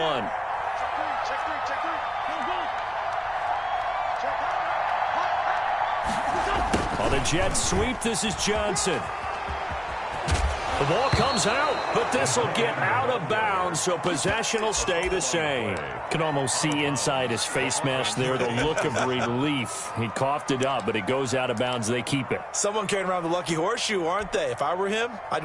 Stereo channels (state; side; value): identical; both; correlation 1.00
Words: On the jet sweep, this is Johnson. The ball comes out, but this will get out of bounds, so possession will stay the same. Can almost see inside his face mask there the look of relief. He coughed it up, but it goes out of bounds. They keep it. Someone carrying around the lucky horseshoe, aren't they? If I were him, I'd